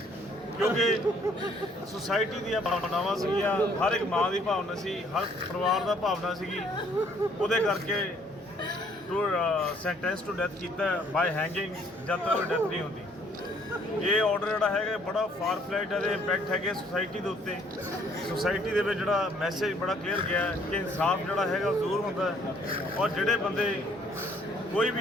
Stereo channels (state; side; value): normal; both; correlation 0.63